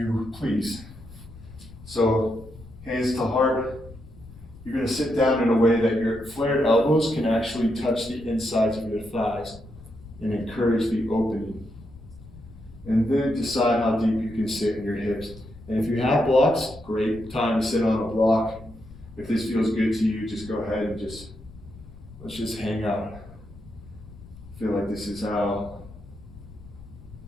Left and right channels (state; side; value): noise; left; rumble, 18 dB below the sound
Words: please. So hands to heart. You're going to sit down in a way that your flared elbows can actually touch the insides of your thighs and encourage the opening. And then decide how deep you can sit in your hips. And if you have blocks, great time to sit on a block. If this feels good to you, just go ahead and let's just hang out. I feel like this is how